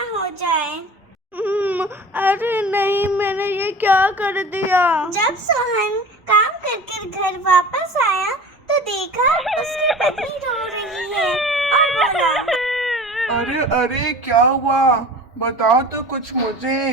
हो जाए। अरे नहीं, मैंने ये क्या कर दिया? जब सोहन काम करके घर वापस आया तो देखा उसकी पत्नी रो रही है और बोला, अरे अरे, क्या हुआ? बताओ तो कुछ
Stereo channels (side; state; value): both; normal; correlation 0.39